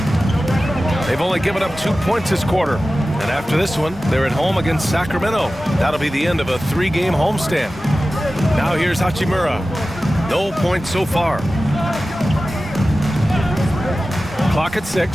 They've only given up 2 points this quarter. And after this one, they're at home against Sacramento. That'll be the end of a 3-game homestand. Now here's Hachimura. No points so far. Clock at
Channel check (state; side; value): normal; both; correlation 0.95